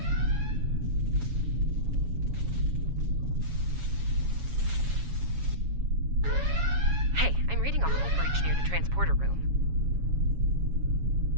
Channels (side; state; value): left; late; 7.2 ms